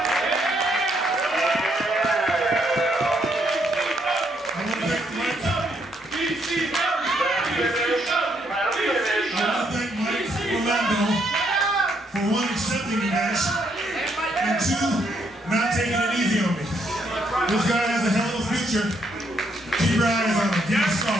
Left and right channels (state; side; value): normal; both; correlation 0.73